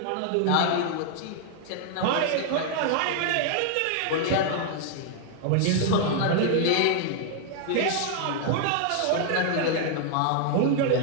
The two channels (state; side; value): different; both; correlation 0.00